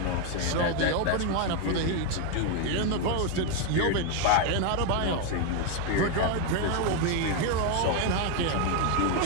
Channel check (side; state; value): both; different; correlation 0.02